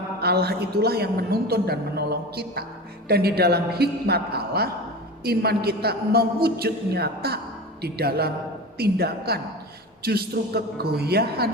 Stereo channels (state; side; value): normal; both; correlation 0.30